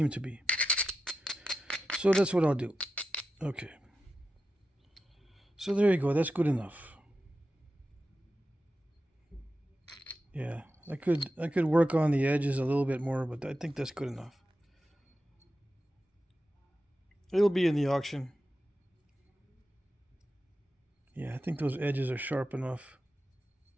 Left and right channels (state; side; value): normal; both; correlation 0.91